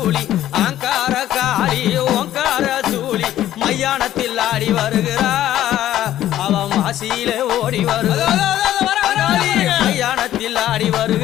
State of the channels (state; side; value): quieter; right; 12.8 dB